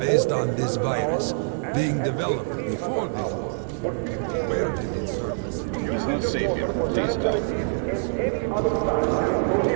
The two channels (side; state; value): left; silent; digital silence